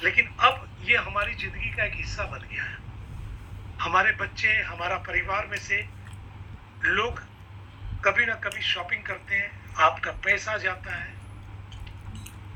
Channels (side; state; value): both; identical; correlation 1.00